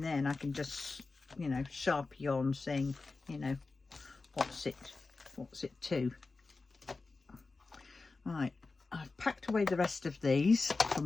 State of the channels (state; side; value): quieter; right; 3.8 dB